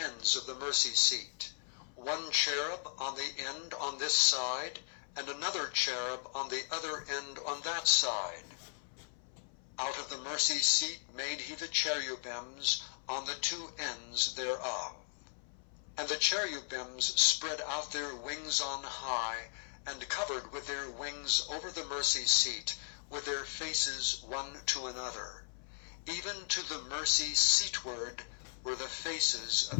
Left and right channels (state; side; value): silent; right; 53 dB below the other